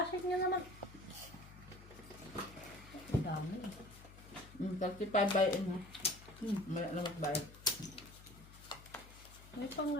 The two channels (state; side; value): noise; left; hum, 18 dB below the sound